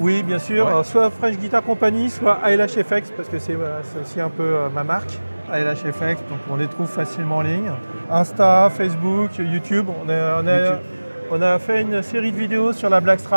bien sûr. Ouais. Alors, soit Fresh Guitar Company, soit ALHFX, parce que c'est aussi un peu ma marque. ALHFX, donc on les trouve facilement en ligne. Insta, Facebook, YouTube. On a fait une série de vidéos sur la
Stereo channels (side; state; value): both; inverted; correlation -1.00